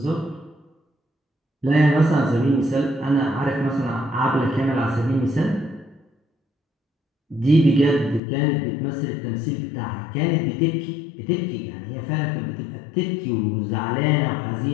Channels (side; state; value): right; drops out; at 8.2 s